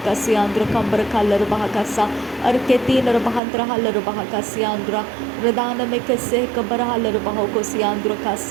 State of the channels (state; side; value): drops out; left; at 3.4 s